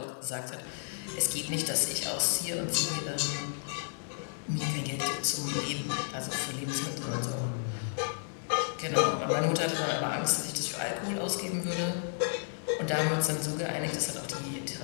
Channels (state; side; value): silent; right; digital silence